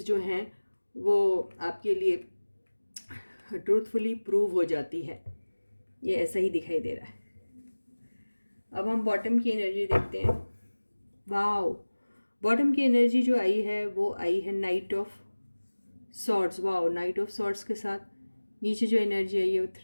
जो हैं वो आपके लिए ट्रूथफुली प्रूव हो जाती है। ये ऐसा ही दिखाई दे रहा है। अब हम बॉटम की एनर्जी देखते हैं। वाओ, बॉटम की एनर्जी जो आई है वो आई है night of swords. Wow, night of swords के साथ नीचे जो एनर्जी आई है वो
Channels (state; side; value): inverted; both; correlation -1.00